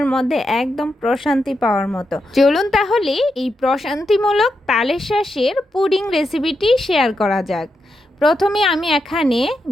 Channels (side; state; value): both; normal; correlation 0.85